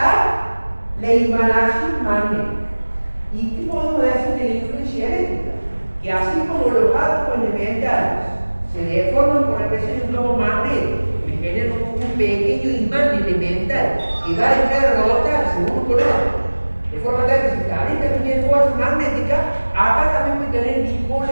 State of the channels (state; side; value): inverted; both; correlation -1.00